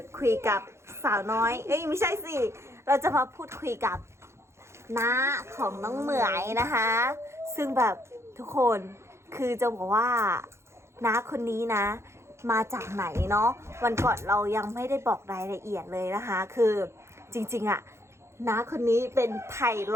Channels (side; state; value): left; late; 0.13 ms